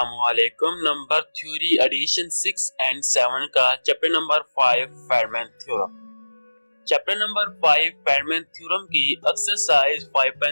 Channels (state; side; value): inverted; both; correlation -1.00